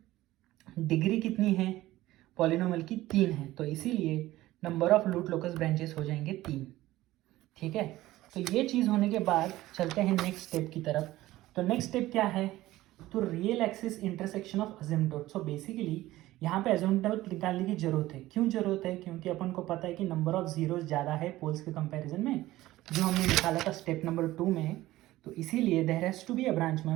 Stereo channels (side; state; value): left; quieter; 16.5 dB